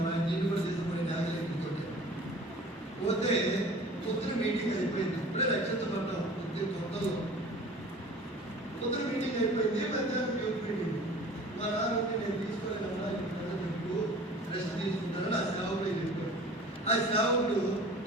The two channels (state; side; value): normal; both; correlation 0.44